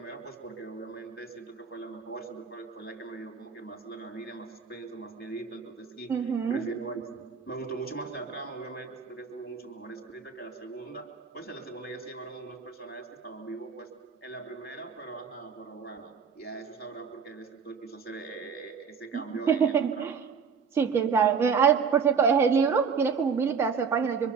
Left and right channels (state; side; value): quieter; left; 6.1 dB